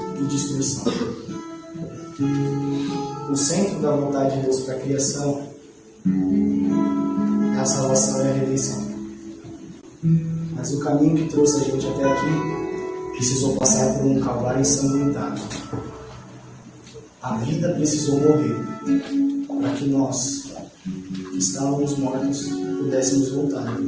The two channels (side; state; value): both; identical; correlation 1.00